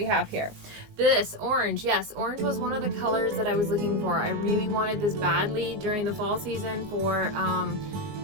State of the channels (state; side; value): late; left; 19 ms